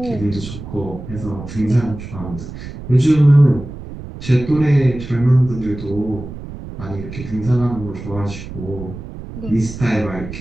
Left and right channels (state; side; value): noise; right; rumble, 11 dB below the sound